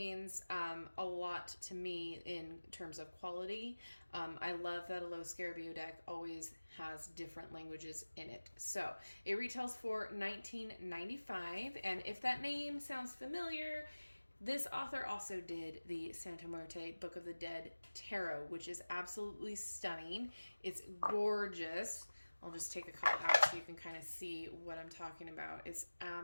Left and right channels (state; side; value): inverted; both; correlation -1.00